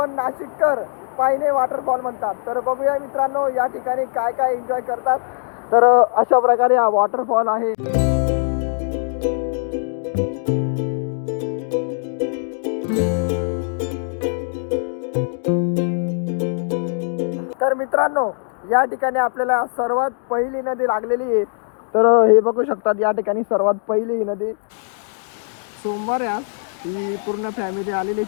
नाशिककर पायने वॉटरफॉल म्हणतात. तर बघूया मित्रांनो या ठिकाणी काय काय एन्जॉय करतात. तर अशा प्रकारे हा वॉटरफॉल आहे. तर मित्रांनो या ठिकाणी आपल्याला सर्वात पहिली नदी लागलेली आहे. तर हे बघू शकतात या ठिकाणी सर्वात पहिली ही नदी. सोमवार आज ही पूर्ण फॅमिली आलेली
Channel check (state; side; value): silent; right; digital silence